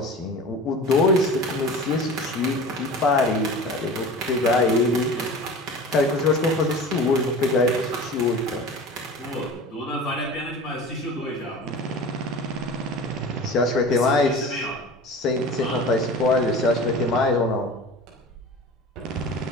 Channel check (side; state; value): both; normal; correlation 0.36